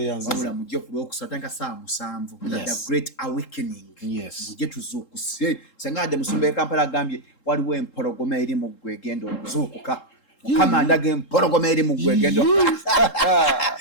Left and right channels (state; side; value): late; right; 3.7 ms